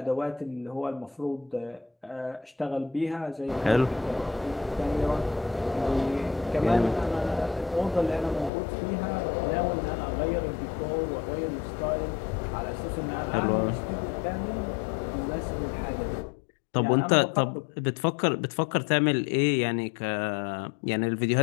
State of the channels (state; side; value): drops out; right; at 8.5 s